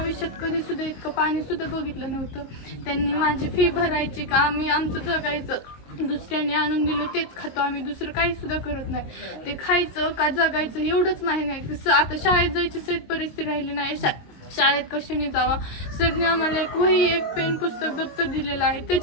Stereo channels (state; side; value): late; right; 22 ms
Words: कधी सुद्धा इतकं पाणी सुद्धा बघितलं नव्हतं. त्यांनी माझी फी भरायची का आम्ही आमचं जगायचं, दुसऱ्याने आणून दिलं तेच खातो आम्ही, दुसरं काही सुद्धा करत नाही. ते खायचं का जगायचं एवढंच माहिती नाही. आता शाळेत जायची सेत परिस्थिती राहिली नाही. शाळेत कशाने जावा? सरने आम्हाला एक वही, एक पेन, पुस्तक, दप्तर दिलेलं आहे.